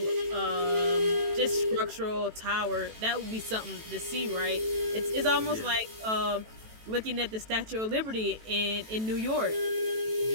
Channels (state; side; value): late; left; 18 ms